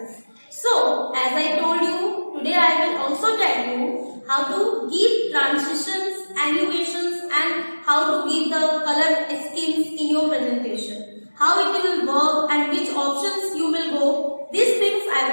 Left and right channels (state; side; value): inverted; both; correlation -1.00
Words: So, as I told you, today I will also tell you how to give transitions, animations and how to give the color schemes in your presentation. How it will work and which options you will go. These things I